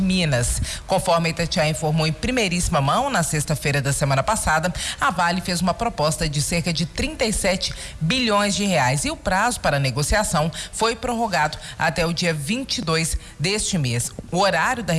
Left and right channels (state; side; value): identical; both; correlation 1.00